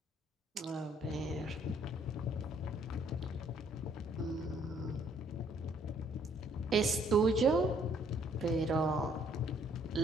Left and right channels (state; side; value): normal; both; correlation 0.65